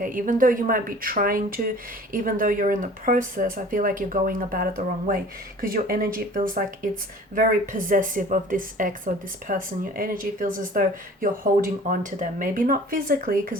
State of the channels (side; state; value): both; normal; correlation 0.46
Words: Even though you might be trying to, even though you're in the process, I feel like you're going about it the wrong way because your energy feels like it's very possessive of this ex or this person. Your energy feels as though you're holding on to them. Maybe not physically